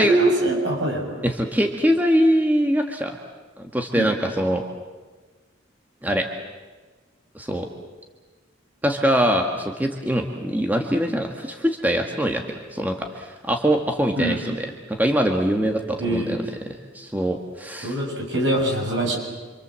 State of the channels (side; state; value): both; normal; correlation 0.73